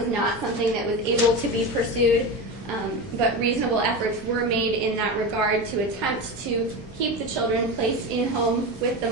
not something that was able to be pursued, but reasonable efforts were made in that regard to attempt to keep the children placed in-home with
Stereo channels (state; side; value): normal; both; correlation 0.22